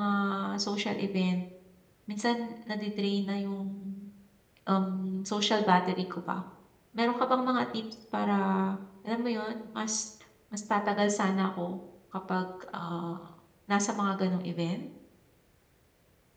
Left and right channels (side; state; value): both; identical; correlation 1.00